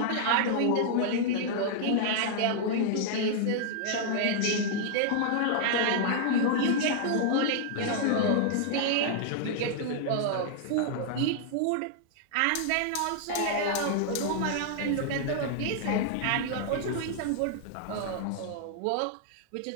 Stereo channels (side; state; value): both; different; correlation -0.01